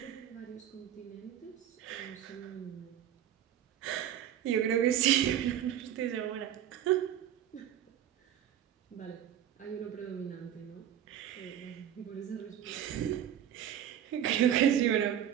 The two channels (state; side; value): quieter; left; 10.4 dB